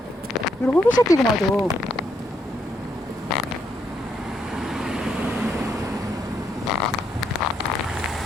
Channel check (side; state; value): both; normal; correlation 0.76